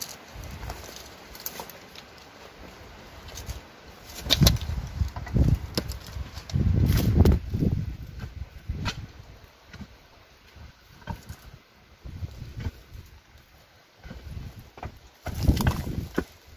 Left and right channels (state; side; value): identical; both; correlation 1.00